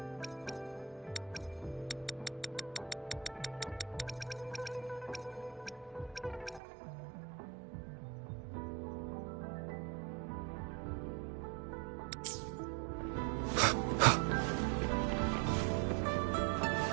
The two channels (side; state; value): left; drops out; at 6.6 s